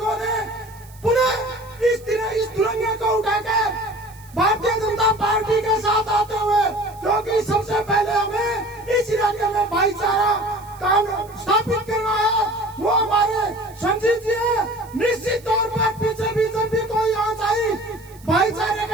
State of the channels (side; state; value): right; noise; hiss, 24 dB below the sound